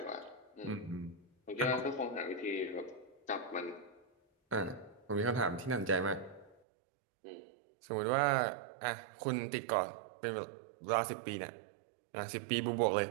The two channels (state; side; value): drops out; left; at 6.6 s